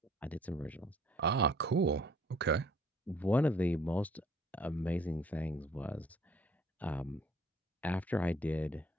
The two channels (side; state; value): both; normal; correlation 0.59